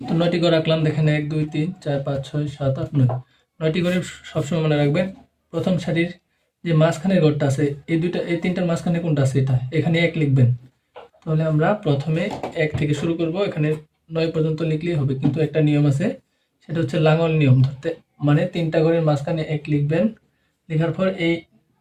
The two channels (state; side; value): identical; both; correlation 1.00